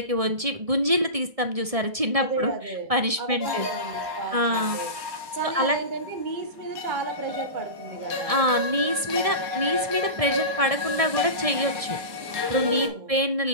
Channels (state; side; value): late; left; 1.7 ms